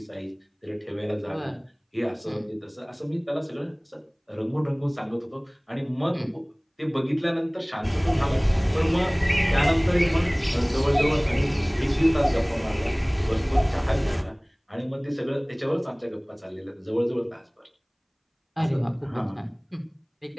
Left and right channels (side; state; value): both; identical; correlation 1.00